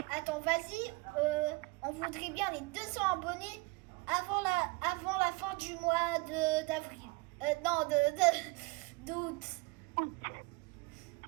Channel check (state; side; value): quieter; left; 25.6 dB